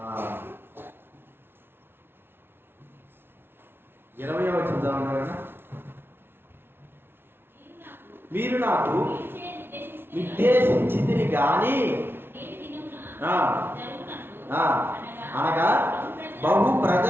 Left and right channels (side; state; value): left; late; 0.11 ms